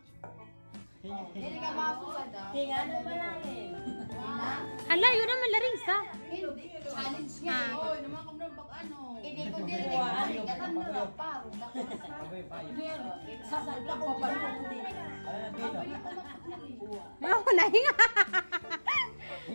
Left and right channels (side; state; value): both; inverted; correlation -1.00